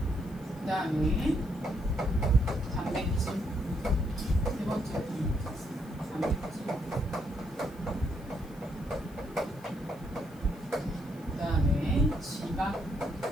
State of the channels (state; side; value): noise; left; hiss, 25 dB below the sound